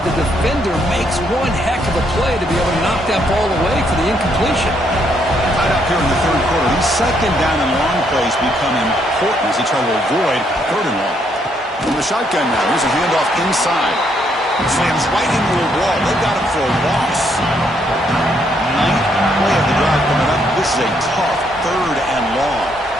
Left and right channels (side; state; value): both; normal; correlation 0.72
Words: the defender makes one heck of a play to be able to knock that ball away for the incompletion. Tied up here in the third quarter. These second down and long plays become important as they try to avoid third and long. From the shotgun now, here's a handoff inside. Slams right into a wall. They got him for a loss. Ninth play of the drive coming up. This is a tough third and long.